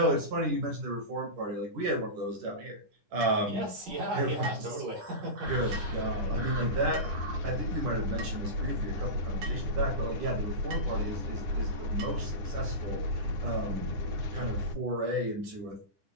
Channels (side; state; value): left; late; 10 ms